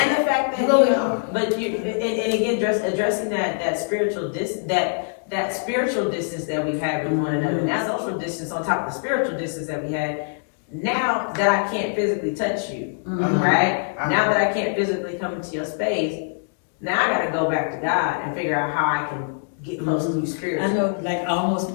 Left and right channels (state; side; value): silent; right; digital silence